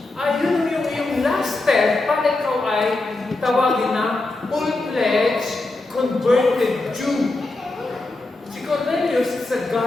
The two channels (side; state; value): right; quieter; 3.1 dB